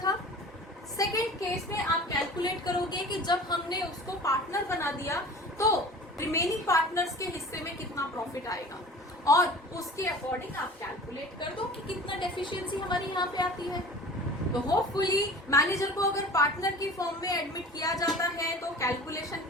सेकेंड केस में आप कैलकुलेट करोगे कि जब हमने उसको पार्टनर बना दिया तो रिमेनिंग पार्टनर्स के हिस्से में कितना प्रॉफिट आएगा, और उसके अकॉर्डिंग आप कैलकुलेट कर दो कि कितना डेफिशिएंसी हमारी यहाँ पे आती है। तो होपफुली मैनेजर को अगर पार्टनर की फॉर्म में एडमिट किया जाता है तो कैलकुलेशन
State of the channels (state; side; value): normal; both; correlation 0.41